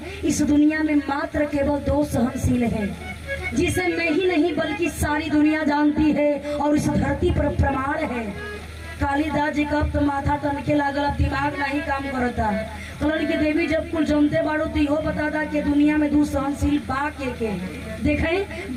इस दुनिया में मात्र केवल दो सहनशील हैं, जिसे मैं ही नहीं बल्कि सारी दुनिया जानती है और इस धरती पर प्रमाण है। कालिदास जी का तो माथा टनके लागल, दिमाग नहीं काम करता। कलन की देवी जब कुल जमते बाड़ो तो इहो बताता कि दुनिया में दो सहनशील बा के देखें।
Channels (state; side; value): identical; both; correlation 1.00